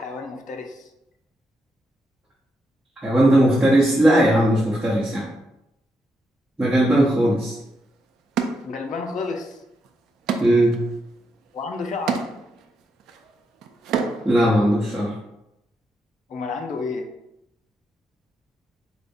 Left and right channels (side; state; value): both; normal; correlation 0.82